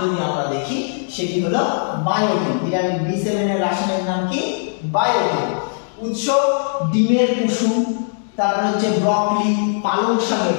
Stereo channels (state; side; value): silent; right; digital silence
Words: আমরা দেখি সেটি হলো বায়োটিন। ভিটামিন বি7 এর রাসায়নিক নাম কি? বায়োটিন। উৎস ডিমের কুসুম, তারপর হচ্ছে ব্রকলি, পালং শাকে